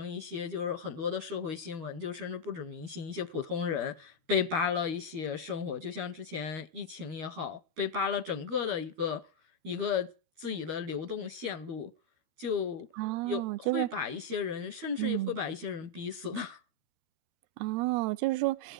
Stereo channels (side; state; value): left; late; 13 ms